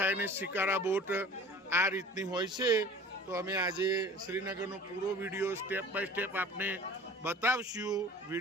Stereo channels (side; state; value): both; normal; correlation 0.43